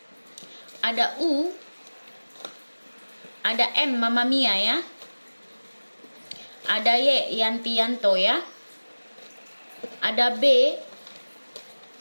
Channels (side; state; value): both; inverted; correlation -1.00